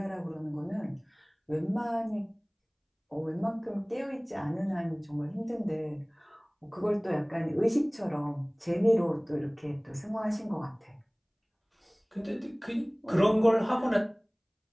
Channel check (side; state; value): both; identical; correlation 1.00